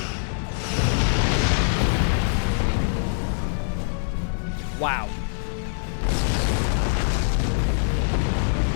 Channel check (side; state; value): right; silent; 61 dB below the other